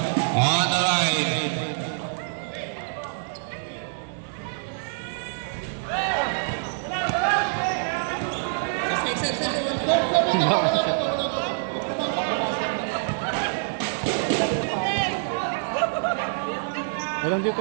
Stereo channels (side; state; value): left; silent; digital silence